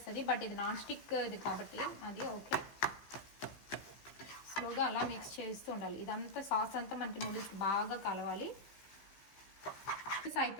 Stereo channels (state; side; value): late; right; 15 ms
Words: బట్ ఇది నాన్ స్టిక్ ఇది కాబట్టి అది ఓకే. స్లోగా అలా మిక్స్ చేస్తూ ఉండాలి. ఇదంతా సాస్ అంతా మనకి నూడిల్స్కి బాగా కలవాలి.